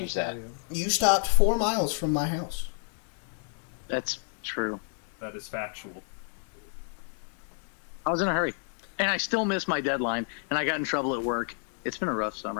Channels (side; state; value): right; silent; 57 dB below the other